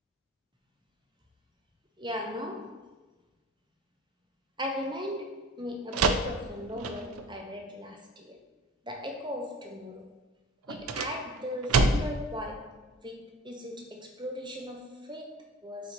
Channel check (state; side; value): normal; both; correlation 0.40